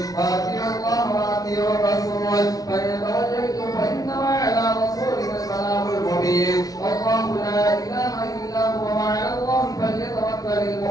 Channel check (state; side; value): late; right; 0.18 ms